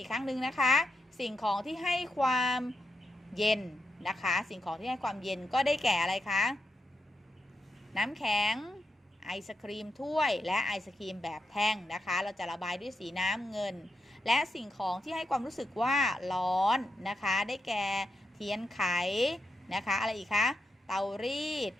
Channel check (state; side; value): normal; both; correlation 0.86